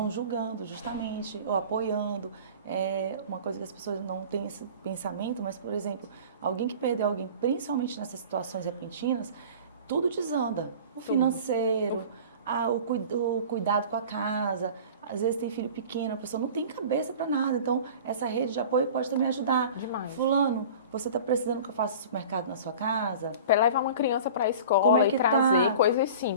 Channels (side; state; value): both; inverted; correlation -0.40